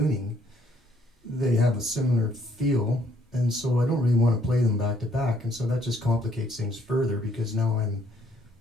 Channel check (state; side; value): normal; both; correlation 0.67